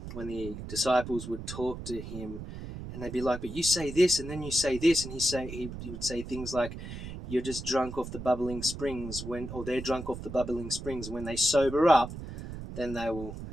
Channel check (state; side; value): noise; right; rumble, 9 dB below the sound